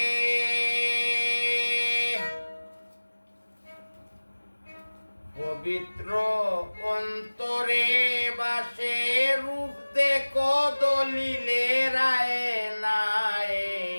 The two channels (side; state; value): both; inverted; correlation -1.00